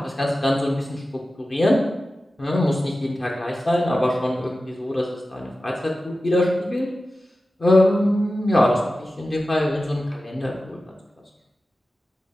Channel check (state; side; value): normal; both; correlation 0.94